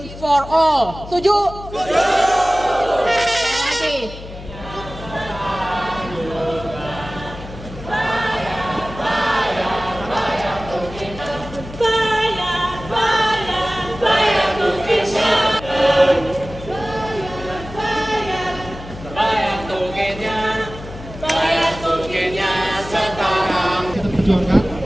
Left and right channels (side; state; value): left; noise; hum, 14 dB below the sound